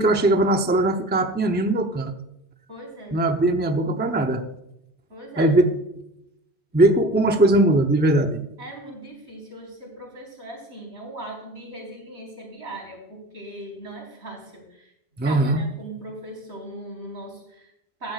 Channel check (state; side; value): normal; both; correlation 0.40